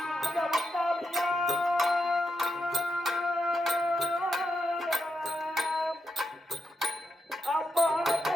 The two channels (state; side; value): normal; both; correlation 0.85